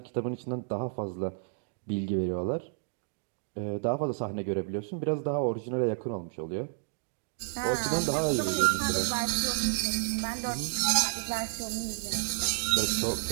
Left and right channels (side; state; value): left; silent; digital silence